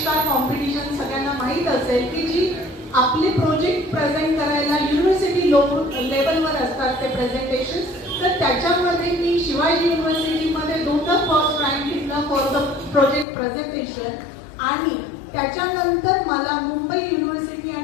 कॉम्पिटिशन सगळ्यांना माहीत असेल की जी आपले प्रोजेक्ट प्रेझेंट करायला युनिव्हर्सिटी लेवलवर असतात ते प्रेझेंटेशन, तर त्याच्यामध्ये मी शिवाजी युनिव्हर्सिटीमध्ये 2दा फर्स्ट रँक घेतला फॉर द प्रोजेक्ट प्रेझेंटेशन. आणि त्याच्यानंतर मला मुंबई युनिव्हर्सिटी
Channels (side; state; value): right; drops out; at 13.2 s